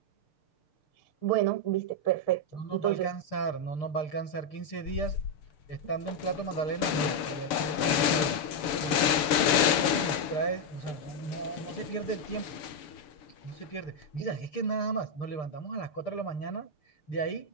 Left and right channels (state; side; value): late; right; 7.1 ms